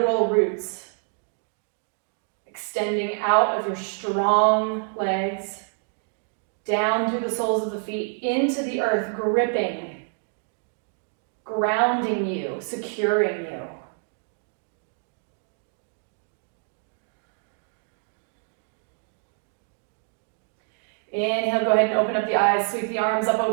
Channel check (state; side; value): silent; left; 57 dB below the other